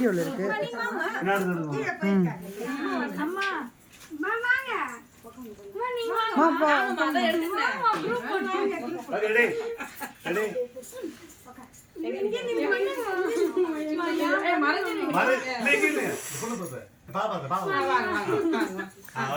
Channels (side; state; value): both; identical; correlation 1.00